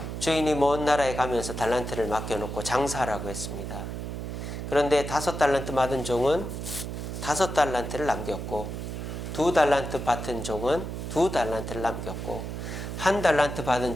주인이 먼 나라에 가면서 달란트를 맡겨놓고 장사하라고 했습니다. 그런데 5달란트 받은 종은 5달란트를 남겼고, 2달란트 받은 종은 2달란트를 남겼고, 1달란트 받은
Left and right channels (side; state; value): right; noise; hum, 6 dB below the sound